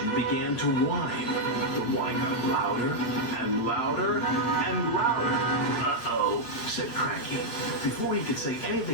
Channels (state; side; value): late; right; 8.6 ms